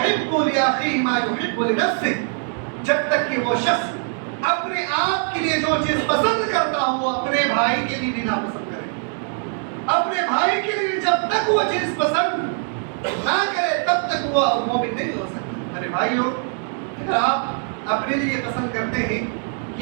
لاخیہ ما یحب لنفسہ, جب تک کہ وہ شخص اپنے آپ کے لیے جو چیز پسند کرتا ہو اپنے بھائی کے لیے بھی ناپسند کرے. اپنے بھائی کے لیے جب تک وہ چیز پسند نہ کرے تب تک وہ مومن نہیں ہو سکتا. میرے بھائیوں, اگر آپ اپنے لیے پسند کرتے ہیں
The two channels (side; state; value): left; silent; 55 dB below the other